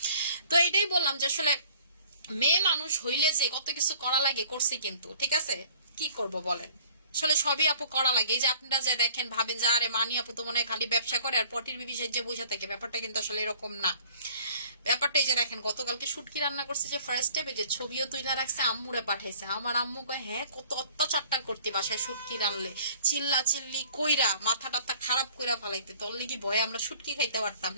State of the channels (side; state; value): both; inverted; correlation -0.53